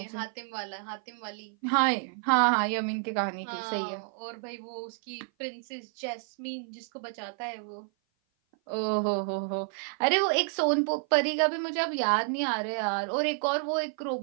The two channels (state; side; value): silent; left; 55 dB below the other